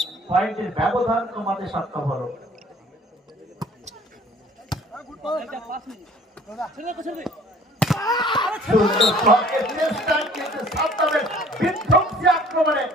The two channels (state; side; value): normal; both; correlation 0.53